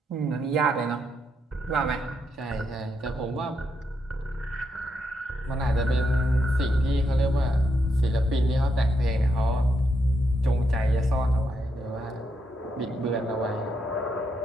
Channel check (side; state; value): both; normal; correlation 0.80